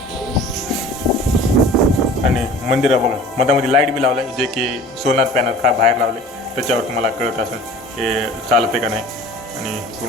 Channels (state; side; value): normal; both; correlation 0.44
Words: आणि मंदिर बघा मधामध्ये लाईट बी लावलं आहे, जे की सोनार पॅनल बाहेर लावले, त्याच्यावर तुम्हाला कळत असेल हे चालते का नाही. आणि